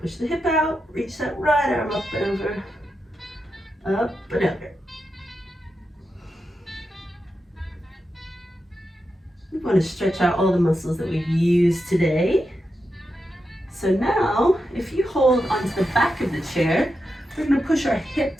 Push the hip out, reach that right arm up and over, up and over. We want to stretch out all the muscles that we've used today. So now, if you hold onto the back of the chair, we're going to push our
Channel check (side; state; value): both; normal; correlation 0.88